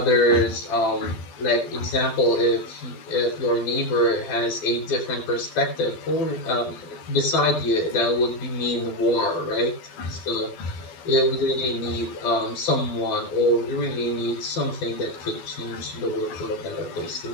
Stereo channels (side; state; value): right; late; 12 ms